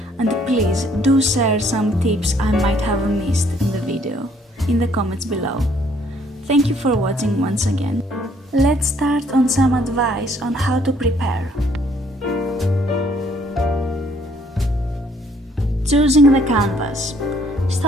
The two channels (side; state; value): both; normal; correlation 0.64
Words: and please do share some tips I might have missed in the video in the comments below. Thank you for watching once again. Let's start on some advice on how to prepare. Choosing the canvas.